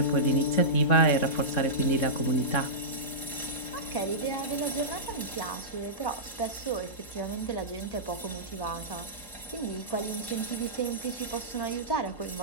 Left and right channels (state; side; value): late; right; 4.3 ms